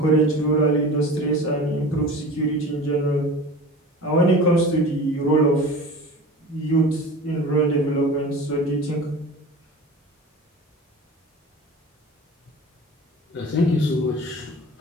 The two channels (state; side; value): normal; both; correlation 0.37